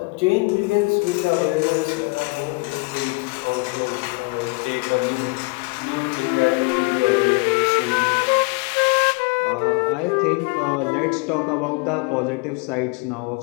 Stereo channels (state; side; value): quieter; right; 28.4 dB